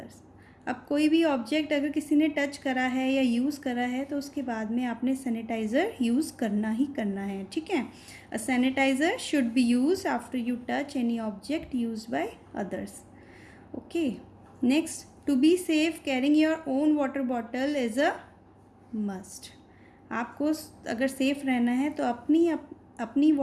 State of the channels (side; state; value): both; identical; correlation 1.00